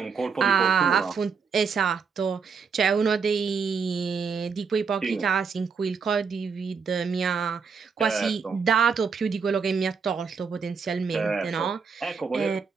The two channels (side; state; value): left; quieter; 5.7 dB